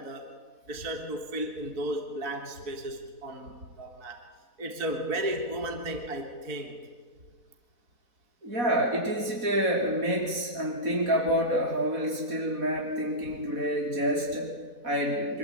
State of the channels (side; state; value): left; late; 4.1 ms